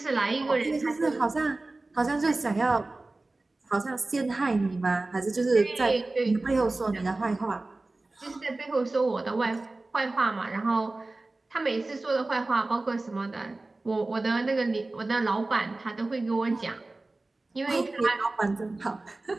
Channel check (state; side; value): quieter; left; 3.1 dB